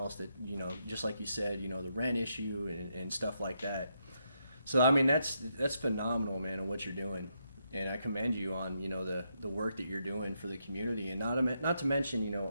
that, just like you said, the rent issue and stuff like that. So I mean that's phenomenal, man, on what you're doing, and I commend you on the work that you're doing for the community, and not to mention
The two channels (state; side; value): inverted; both; correlation -0.80